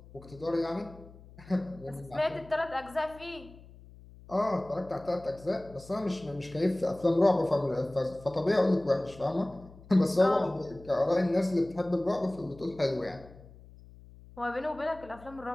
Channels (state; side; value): noise; left; hum, 21 dB below the sound